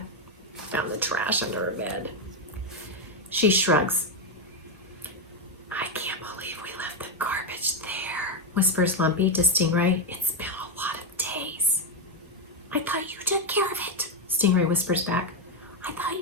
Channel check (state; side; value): normal; both; correlation 0.05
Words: found the trash under her bed. She shrugs. I can't believe we left the garbage there, whispers Lumpy to Stingray. It's been a lot of days. I thought you took care of it, Stingray whispers back. I thought